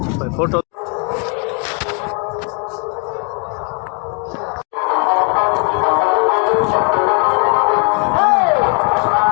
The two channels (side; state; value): right; quieter; 37.4 dB